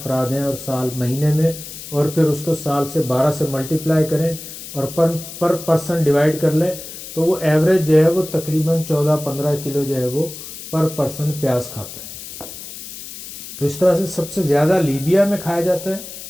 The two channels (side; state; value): left; noise; hiss, 12 dB below the sound